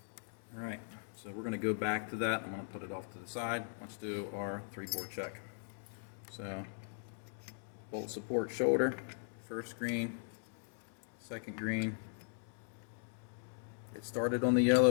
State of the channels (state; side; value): silent; right; digital silence